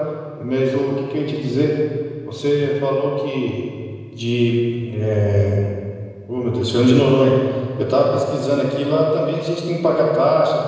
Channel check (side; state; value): both; identical; correlation 1.00